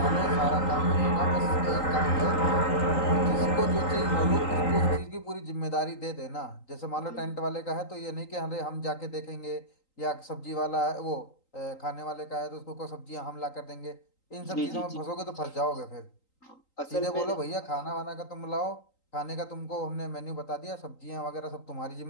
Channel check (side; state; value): right; late; 3.8 ms